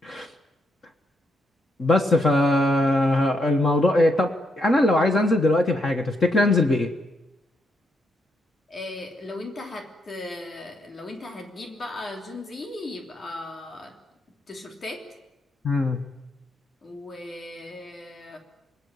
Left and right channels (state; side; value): normal; both; correlation 0.78